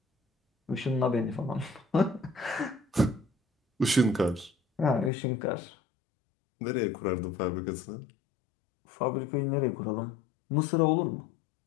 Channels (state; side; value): drops out; right; at 5.1 s